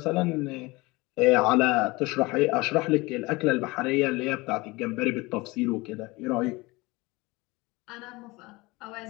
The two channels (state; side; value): quieter; right; 23.0 dB